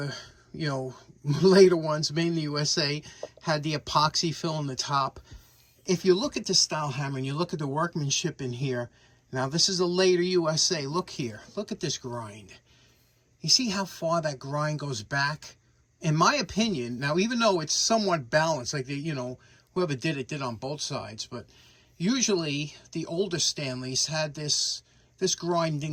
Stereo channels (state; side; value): identical; both; correlation 1.00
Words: you know, later ones made in the USA, had the epoxy fill in the top. If you look at the style hammer and you look at the workmanship in here, now this is a later USA. Look here. Look at this grind. You see how far that grind goes back? In my opinion, now even though it's somewhat balanced, like the, you know, whoever did it did on both sides, but usually the older Stanleys had this grind